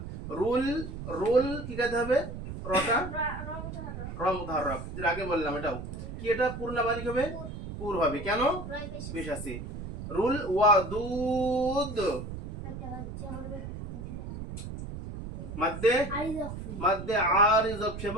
রুল, রুল কি কাজে হবে? রটা র মুতাহাররক, যেটা আগে বললাম এটাও কি, এটা পূর্ণ বারিক হবে? পুর হবে। কেন? বেশ আছে। রুল ওয়াদুদ মধ্যে মধ্যে আরিজ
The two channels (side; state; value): right; noise; rumble, 8 dB below the sound